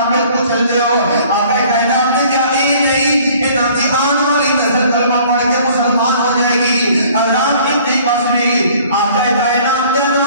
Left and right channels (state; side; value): inverted; both; correlation -0.54